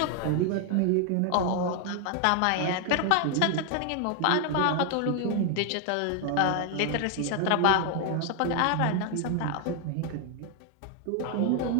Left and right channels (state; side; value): different; both; correlation 0.00